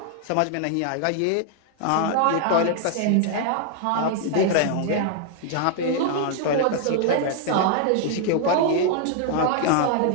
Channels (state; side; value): different; both; correlation 0.00